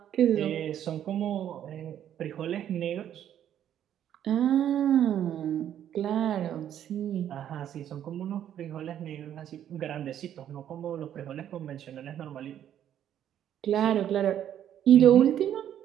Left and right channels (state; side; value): quieter; left; 10.4 dB